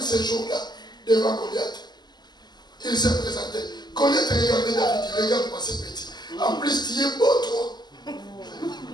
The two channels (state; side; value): late; right; 0.21 ms